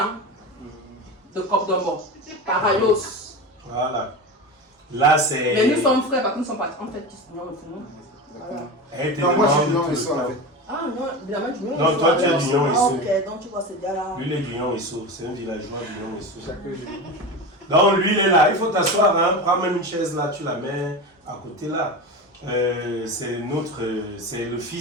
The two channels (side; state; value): both; normal; correlation 0.25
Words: de Copdombo, Parayos. Voilà. Là, c'est. Mais nous sommes frères, parce que nous sommes pas en fait qui sont Non, moi je suis Lyon et Soul avec. Ah non, évidemment du Lyon. Non, toi tu es du Lyon et Soul. Ok, donc tu vois ce gars-là. Lui, il est du Lyon et Soul. C'est un villageois du Lyon et Soul. Donc lui, il est là. Il faut t'asseoir. Hein. Prends même une chaise là, tu la mets à côté là. C'est le